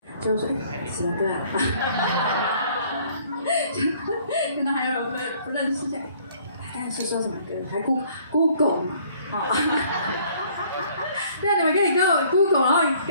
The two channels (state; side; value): inverted; both; correlation -0.59